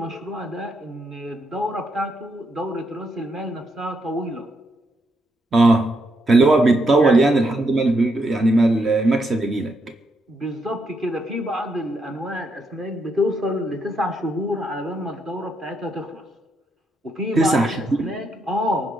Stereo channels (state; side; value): normal; both; correlation 0.79